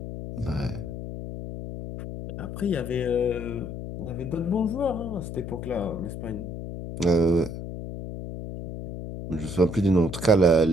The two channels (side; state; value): left; noise; hum, 8 dB below the sound